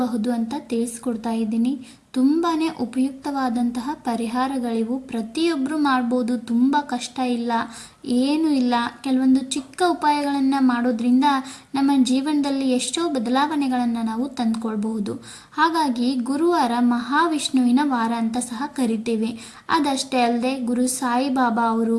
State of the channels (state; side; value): identical; both; correlation 1.00